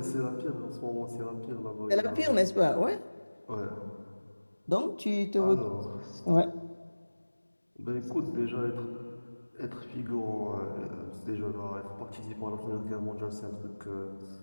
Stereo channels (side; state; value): both; inverted; correlation -1.00